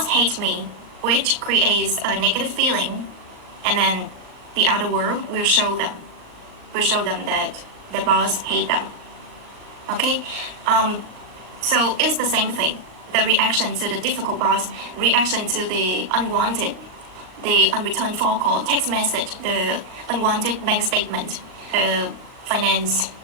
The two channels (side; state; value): left; late; 39 ms